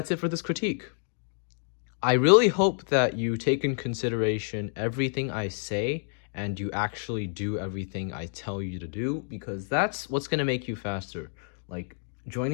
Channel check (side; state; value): right; silent; digital silence